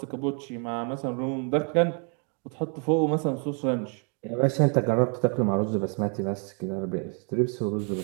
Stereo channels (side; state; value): left; quieter; 39.2 dB